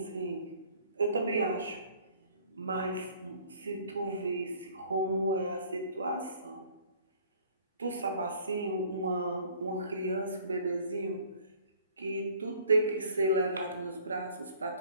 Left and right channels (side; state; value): both; inverted; correlation -0.55